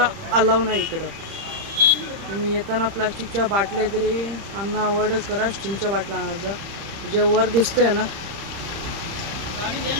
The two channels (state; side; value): late; left; 30 ms